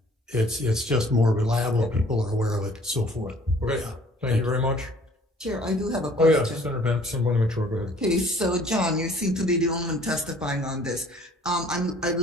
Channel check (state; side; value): normal; both; correlation 0.55